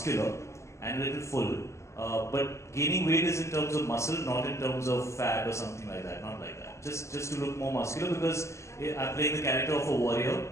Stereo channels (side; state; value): right; late; 0.14 ms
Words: and a little full. But gaining weight is in terms of muscle, not in terms of fat or something like that. Not like that. Just to look more muscular, because I'm playing the character of a warrior.